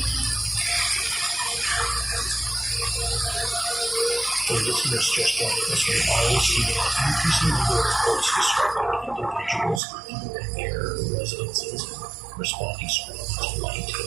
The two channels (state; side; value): drops out; left; at 9.8 s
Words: For listeners just joining us, we always see an increasing number of reports describing individuals leaving their residences and responding strongly to light